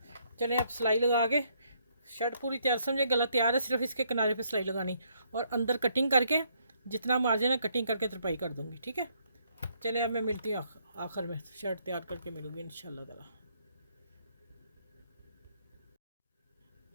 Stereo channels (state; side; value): inverted; both; correlation -0.70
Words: चलें, अब सिलाई लगा के शर्ट पूरी तैयार, समझे गला तैयार है, सिर्फ इसके किनारे पे सिलाई लगानी और अंदर कटिंग करके जितना मार्जिन है कटिंग करके तरपाई कर दूँगी, ठीक है। चले अब मैं मिलती हूँ आखिर में, शर्ट तैयार करके मिलूँगी इंशाल्लाह ताला।